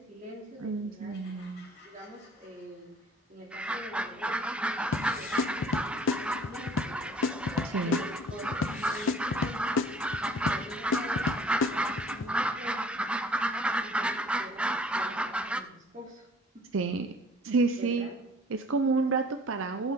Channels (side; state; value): both; normal; correlation 0.52